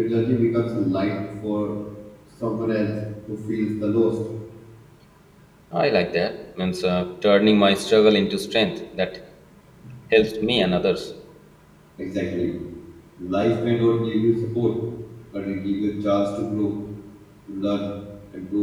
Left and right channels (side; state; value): both; identical; correlation 1.00